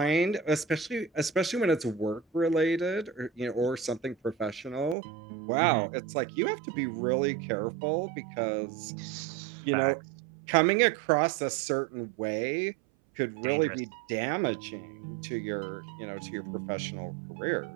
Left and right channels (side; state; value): left; drops out; at 5.0 s